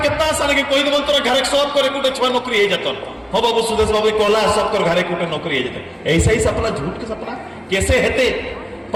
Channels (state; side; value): identical; both; correlation 1.00